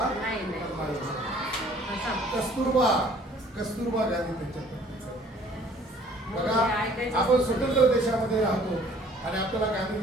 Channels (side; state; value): both; normal; correlation 0.55